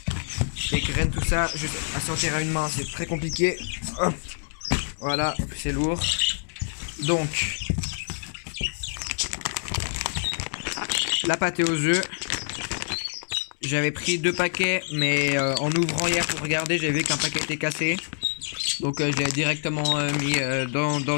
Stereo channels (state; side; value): silent; right; digital silence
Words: les graines, tout ça, juste à sortir à une main, c'est très compliqué. Hop. Voilà, c'est lourd. Donc, la pâté aux œufs. J'avais pris 2 paquets, mais en ouvrant hier pour regarder, j'ai vu qu'un paquet était cassé. Donc, je l'ai directement mis